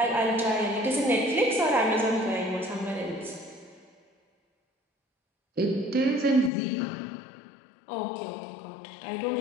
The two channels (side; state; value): right; drops out; at 6.5 s